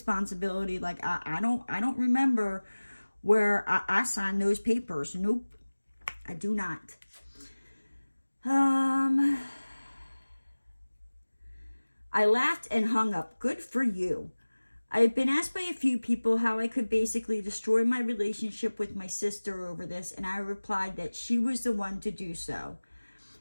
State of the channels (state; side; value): inverted; both; correlation -1.00